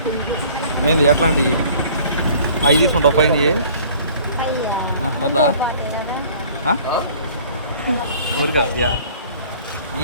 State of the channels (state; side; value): inverted; both; correlation -0.52